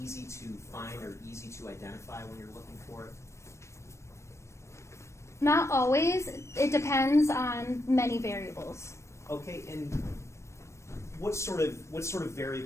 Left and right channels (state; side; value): late; right; 0.13 ms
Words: easy to find or easy to identify when you're looking for it? Not always. It depends on many variables. Okay, and what sort of